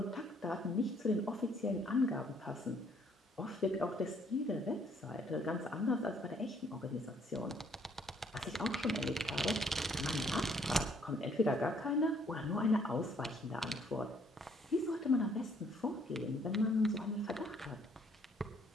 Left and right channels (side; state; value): both; normal; correlation 0.65